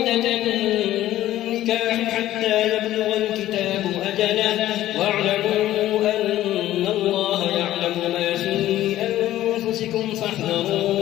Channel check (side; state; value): right; quieter; 14.0 dB